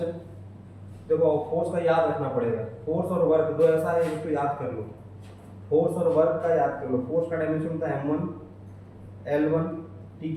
देखो फोर्स का याद रखना पड़ेगा। फोर्स और वर्क दो ऐसा है जिसको याद कर लो। फोर्स और वर्क का याद कर लो। फोर्स का डायमेंशन होता है m1 L1 t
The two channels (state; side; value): identical; both; correlation 1.00